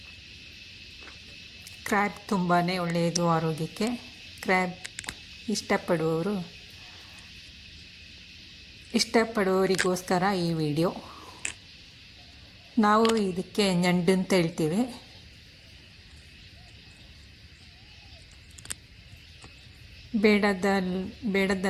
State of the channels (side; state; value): both; identical; correlation 1.00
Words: ಕ್ರ್ಯಾಬ್ ತುಂಬಾ ಒಳ್ಳೆಯದು ಆರೋಗ್ಯಕ್ಕೆ. ಕ್ರ್ಯಾಬ್ ಇಷ್ಟಪಡುವವರಿಗೋಸ್ಕರ ಈ ವಿಡಿಯೋ. ನಾವು ಇದಕ್ಕೆ ñಂಡು ಅಂತ ಹೇಳ್ತೀವಿ.